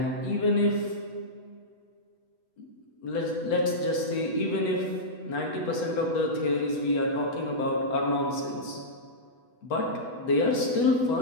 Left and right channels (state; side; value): late; right; 8.1 ms